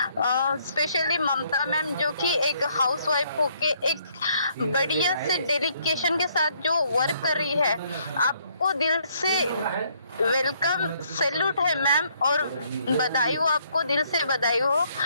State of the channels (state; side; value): inverted; both; correlation -0.68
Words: स्पेशली ममता मैम जो कि एक हाउसवाइफ होके एक बढ़िया से डेडिकेशन के साथ जो वर्क कर रही है, आपको दिल से वेलकम, सैल्यूट है मैम और बधाई हो, आपको दिल से बधाई हो,